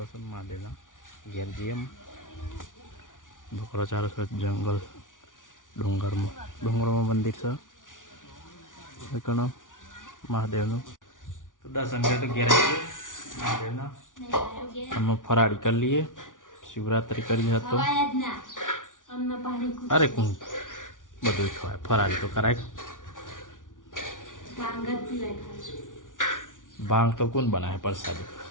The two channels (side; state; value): right; late; 0.88 ms